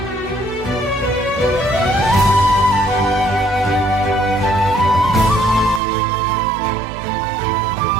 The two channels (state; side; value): drops out; left; at 5.8 s